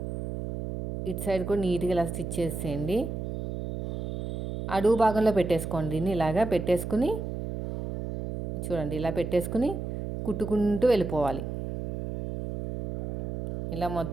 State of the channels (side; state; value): right; noise; hum, 4 dB below the sound